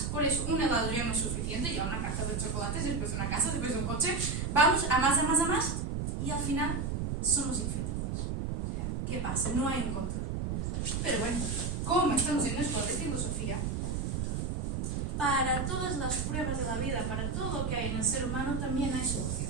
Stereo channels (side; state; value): right; noise; rumble, 1 dB below the sound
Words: por eso un helado ya no es suficiente, ya una caja de chocolates, después de una casa, después de un coche, vamos a más, y al final somos infelices. O sea, ¿qué pasa? No hay un control. Pero bueno, como estamos en esto de filosofía, para todas las pruebas de la vida, para todo lo que hay en el ser humano, también hay